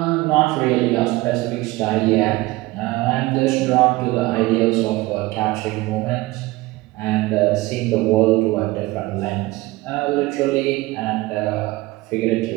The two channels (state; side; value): quieter; left; 20.0 dB